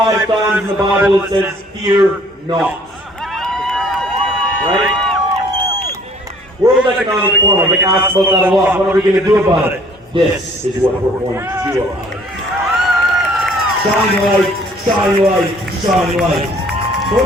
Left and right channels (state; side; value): normal; both; correlation 0.57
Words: times in the Bible it says, fear not. Right? World Economic Forum, I get asked about that a lot. What are we going to do about it? This is what we're going to do about it. Shine light, shine light, shine light. So